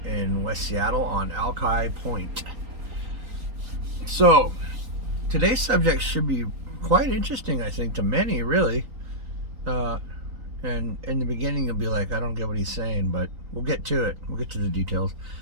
in West Seattle on Alki Point. So, today's subject should be quite interesting, I think, to many, really. And in the beginning, you'll be like, I don't get what he's saying, but we'll get to it. We'll get to the details.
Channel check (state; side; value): late; left; 3.9 ms